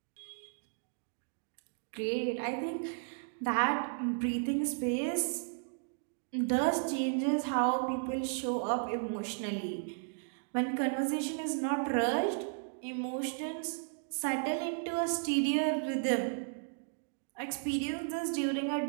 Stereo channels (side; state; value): left; silent; digital silence